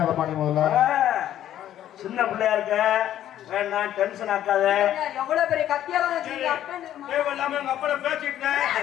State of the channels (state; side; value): quieter; right; 11.7 dB